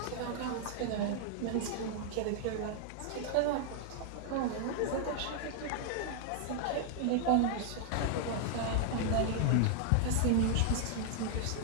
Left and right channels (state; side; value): different; both; correlation 0.00